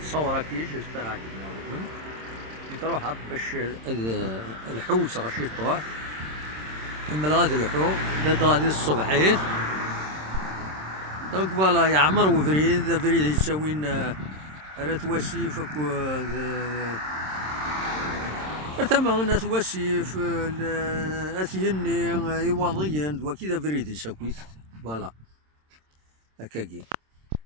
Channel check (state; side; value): late; left; 26 ms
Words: صورة كي جيسبر عجبنا نروح باش الحوت غاشي طوح كمل غادي الحوت داد غادي الصبحيت دونك فوالا يعمر وفريد فريد يساوين راه واسيف ثما ناس واسيف اثيني يواضيين دوا كذا فريد يساكويت فوالا هكاكي